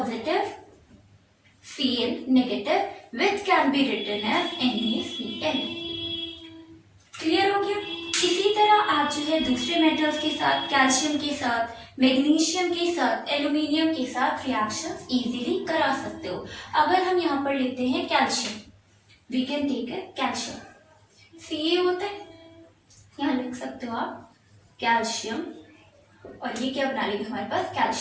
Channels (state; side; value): identical; both; correlation 1.00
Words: Cl negative which can be written as NaCl। Clear हो गया। इसी तरह आप जो है दूसरे मेटल्स के साथ, कैल्शियम के साथ, मैग्नीशियम के साथ, एल्यूमिनियम के साथ रिएक्शंस इजीली करा सकते हो। अगर हम यहाँ पर लेते हैं कैल्शियम, वी कैन टेक है कैल्शियम, Ca होता है, यहाँ लिख सकते हो आप कैल्शियम, और ये क्या बना लेगा हमारे पास,